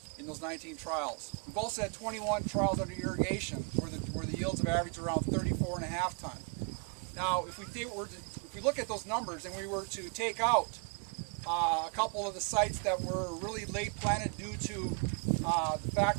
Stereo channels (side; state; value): left; quieter; 37.3 dB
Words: in those 19 trials. We've also had 21 trials under irrigation where the yields have averaged around 34.5 ton. Now, if we look at those numbers and we were to take out a couple of the sites that were really late planted due to the